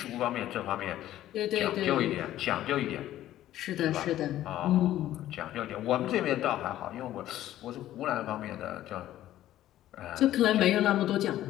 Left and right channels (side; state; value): right; quieter; 13.4 dB